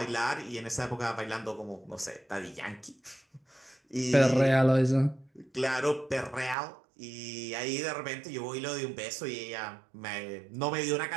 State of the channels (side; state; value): left; drops out; at 6.6 s